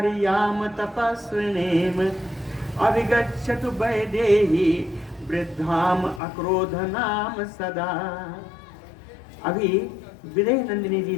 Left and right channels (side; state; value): right; drops out; at 6.2 s